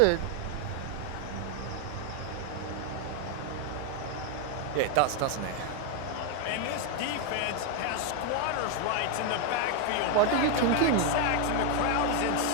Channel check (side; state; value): both; different; correlation 0.01